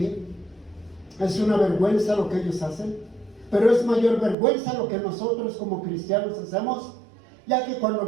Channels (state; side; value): drops out; left; at 4.4 s